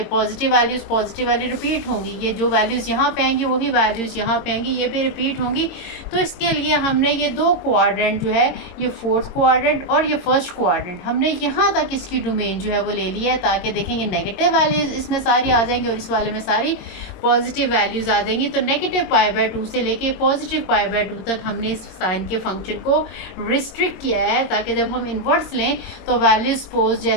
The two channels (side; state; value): right; late; 22 ms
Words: पॉजिटिव वैल्यू रिपीट होंगी, ये जो वैल्यूज़ यहाँ पे आएंगी वही वैल्यूज़ यहाँ पे आएंगी, ये भी रिपीट होंगी। तो इसके लिए हमने ये 2 क्वाड्रेंट जो है, ये 4th क्वाड्रेंट और ये 1st क्वाड्रेंट, हमने यहाँ तक इसकी डोमेन जो है वो ले लिया है ताकि देखें ये नेगेटिव वैल्यूज़ इसमें सारी आ जाएंगी और इस वाले में सारी पॉजिटिव वैल्यूज़ आ जाएंगी। तो नेगेटिव पाई बाय 2 से लेके पॉजिटिव पाई बाय 2 तक हमने इस साइन के फंक्शन को रिस्ट्रिक्ट किया है ताकि जब हम इन्वर्स लें तो वैल्यू सपोज